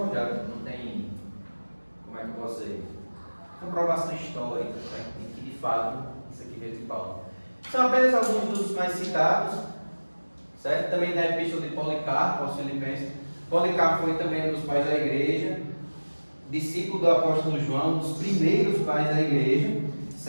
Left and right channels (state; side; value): inverted; both; correlation -1.00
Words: não tem, como é que eu posso dizer, comprovação histórica, certo? E que de fato isso aqui veio de Paulo. São apenas alguns dos mais citados, certo? Também da epístola de Policarpo aos Filipenses. Policarpo foi também um dos pais da igreja, discípulo do apóstolo João, um dos primeiros pais da igreja,